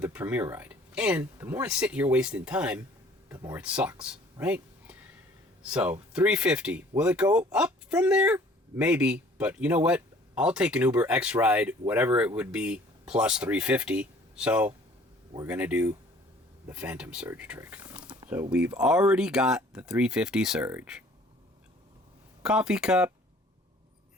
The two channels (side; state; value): both; normal; correlation 0.54